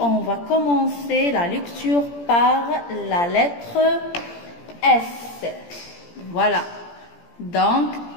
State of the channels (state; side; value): late; right; 17 ms